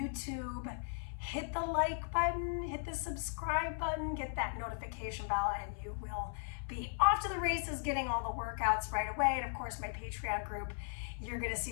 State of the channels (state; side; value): silent; right; 53 dB below the other